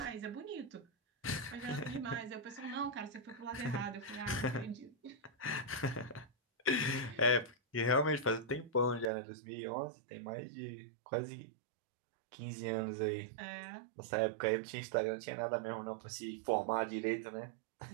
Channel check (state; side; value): drops out; left; at 9.1 s